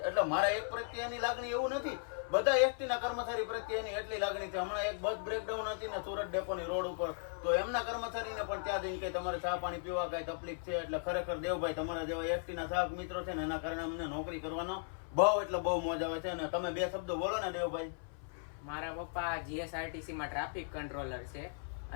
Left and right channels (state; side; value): silent; right; 53 dB below the other